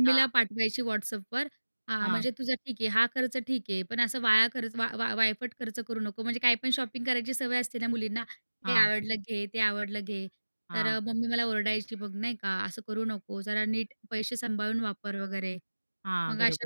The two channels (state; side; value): inverted; both; correlation -1.00